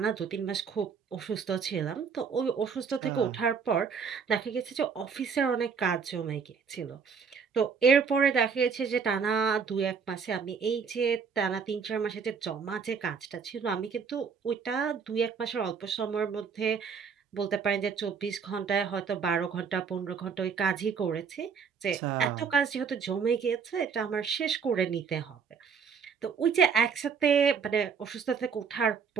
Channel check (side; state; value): left; quieter; 6.1 dB